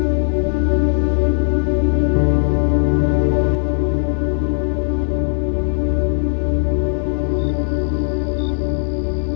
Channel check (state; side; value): silent; right; 67 dB below the other